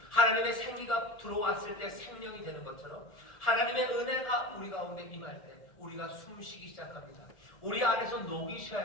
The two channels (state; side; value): late; right; 1.4 ms